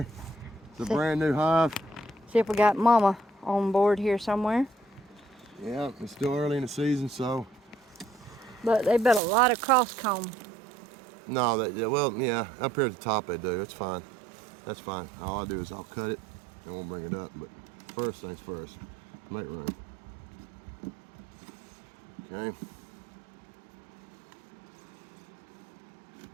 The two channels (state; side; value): drops out; left; at 9.2 s